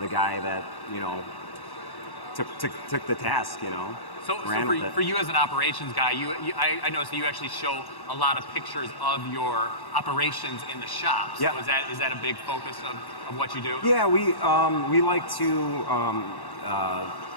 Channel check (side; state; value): right; late; 1.1 ms